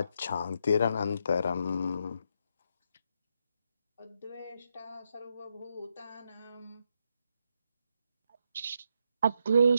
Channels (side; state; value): both; inverted; correlation -0.80